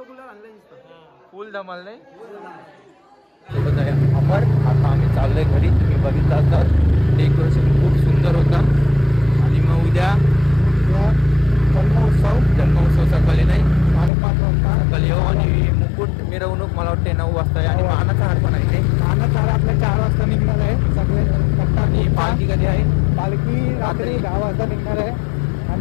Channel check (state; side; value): drops out; right; at 14.1 s